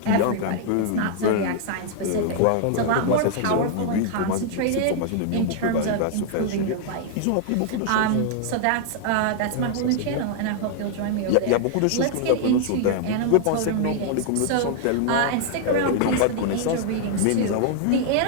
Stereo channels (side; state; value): both; different; correlation -0.01